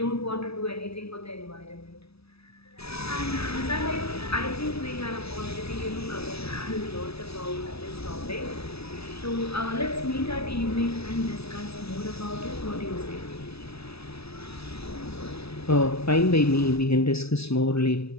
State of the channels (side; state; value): right; late; 0.78 ms